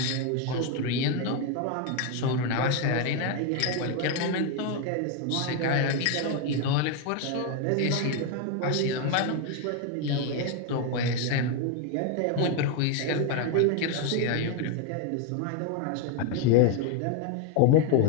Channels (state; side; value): different; both; correlation 0.01